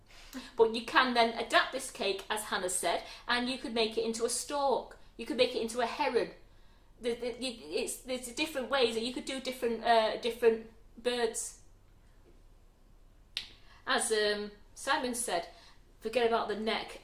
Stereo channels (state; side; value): identical; both; correlation 1.00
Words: But you can then adapt this cake, as Hannah said, and you could make it into a stork. You could make it into a heron. There's different ways that you could do different birds. As Simon said, forget about the neck